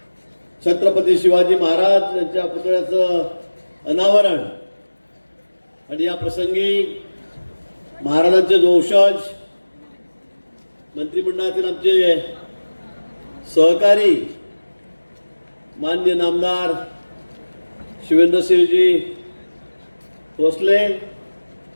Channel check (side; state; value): both; inverted; correlation -1.00